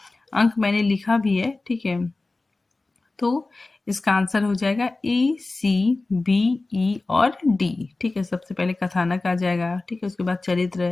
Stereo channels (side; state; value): right; quieter; 3.3 dB